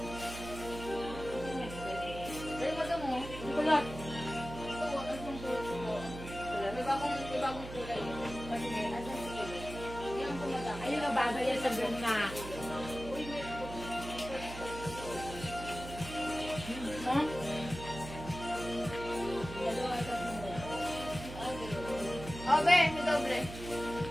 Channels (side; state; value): right; noise; hum, 10 dB below the sound